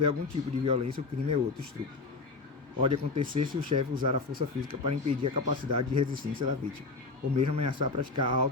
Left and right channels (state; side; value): quieter; right; 3.8 dB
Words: algum tipo de violência, o crime é outro, estupro. Pode acontecer se o chefe usar a força física para impedir a capacidade de resistência da vítima, ou mesmo ameaçar praticar